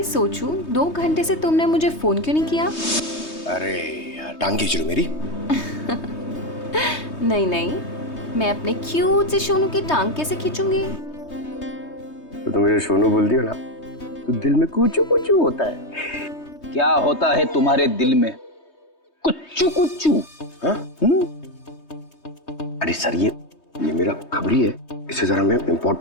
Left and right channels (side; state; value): right; late; 3.2 ms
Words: सोचूं 2 घंटे से तुमने मुझे फोन क्यों नहीं किया? अरे यार टांग खींच रही मेरी। नहीं नहीं, मैं अपने क्यूट से सोनू की टांग कैसे खींचूंगी? तो तुम मुझे सोनू बोलती हो ना, तो दिल में कुचू कुचू होता है। क्या होता है तुम्हारे दिल में? कुच्चू कुच्चू। हाँ? अरे सर ये मेरा खबरी है, इससे जरा मैं